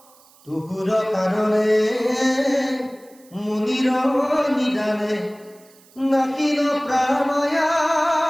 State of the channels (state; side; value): noise; right; hiss, 28 dB below the sound